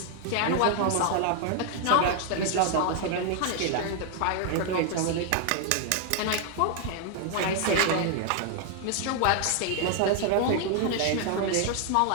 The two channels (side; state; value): both; different; correlation 0.00